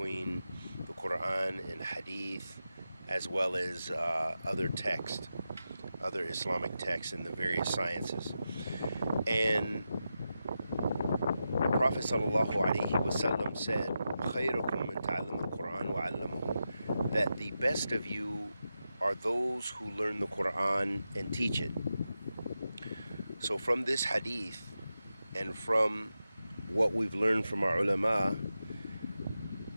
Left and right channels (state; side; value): inverted; both; correlation -0.90